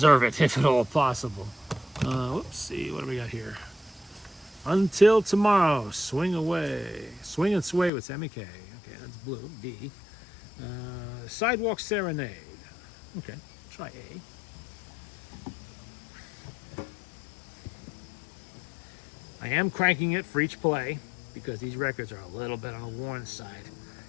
it if at all possible. Let's see, what do we got here? Until tomorrow, swing away. Swing and sway with MEK. Okay, that's blue, D. Sidewalk Serenade. Okay, try A. I am cranking it for each play because these records are a little bit on the worn side,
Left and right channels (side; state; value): right; drops out; at 7.9 s